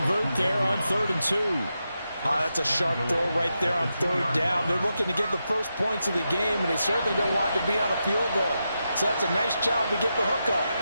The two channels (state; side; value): inverted; both; correlation -0.87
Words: there on 3rd and 2. That's a sharp throw right there on 3rd down. They're looking to get the first points of the game, and they certainly don't want to be on a field goal. So that's a nice job to get the hook up